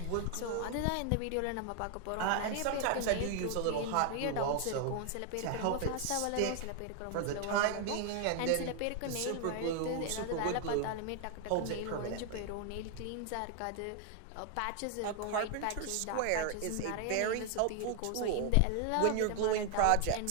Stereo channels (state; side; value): different; both; correlation 0.00